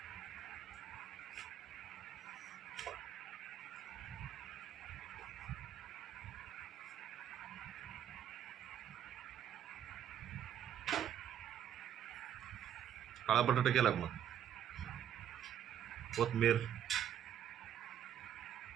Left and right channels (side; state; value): left; quieter; 10.0 dB